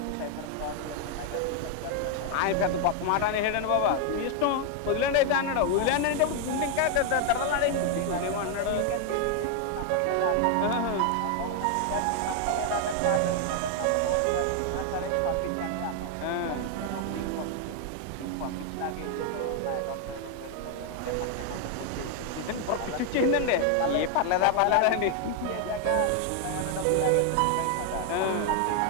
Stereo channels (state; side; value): different; both; correlation 0.00